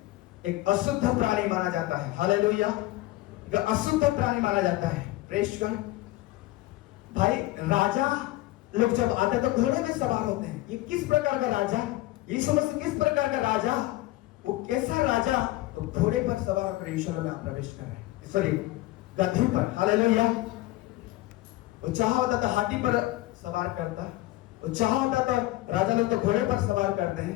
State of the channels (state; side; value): quieter; right; 17.6 dB